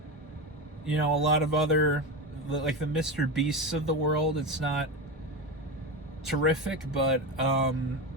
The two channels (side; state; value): both; normal; correlation 0.19